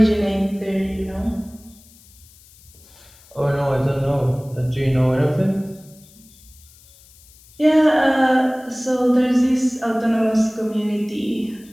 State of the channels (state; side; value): noise; left; hiss, 26 dB below the sound